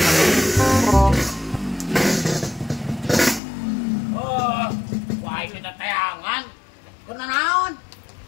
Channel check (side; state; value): right; drops out; at 3.4 s